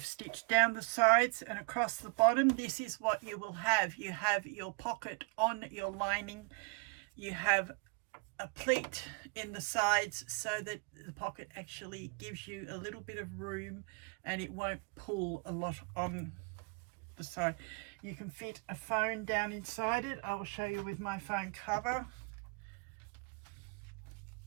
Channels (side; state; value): left; quieter; 34.7 dB